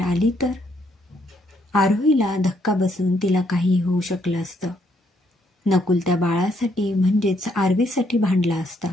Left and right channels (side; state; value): both; normal; correlation 0.72